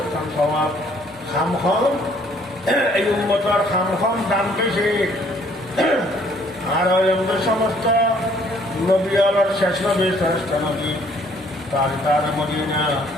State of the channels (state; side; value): normal; both; correlation 0.62